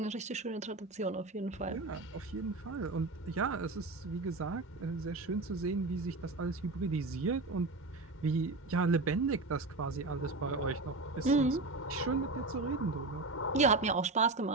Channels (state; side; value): quieter; left; 3.3 dB